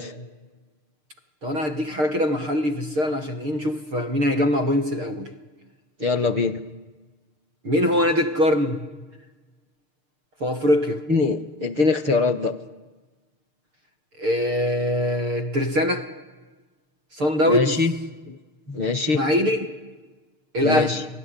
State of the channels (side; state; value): left; late; 6.6 ms